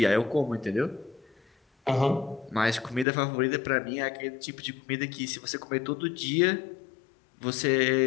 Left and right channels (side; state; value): right; drops out; at 3.1 s